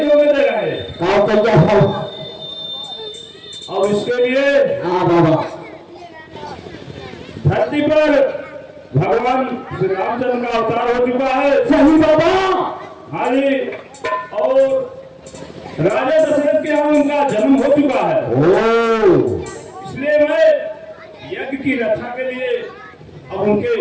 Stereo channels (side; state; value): both; identical; correlation 1.00